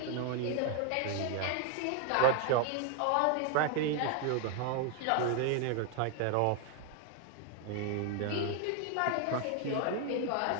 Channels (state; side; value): different; both; correlation 0.01